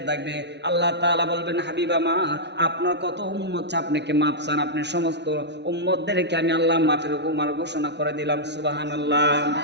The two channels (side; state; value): left; late; 0.50 ms